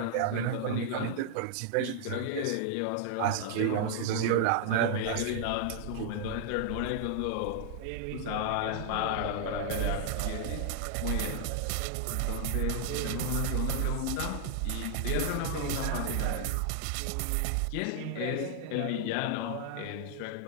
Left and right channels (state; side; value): different; both; correlation 0.00